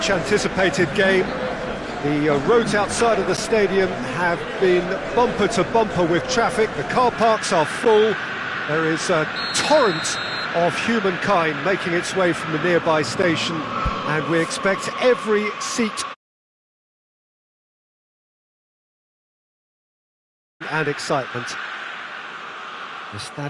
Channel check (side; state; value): both; identical; correlation 1.00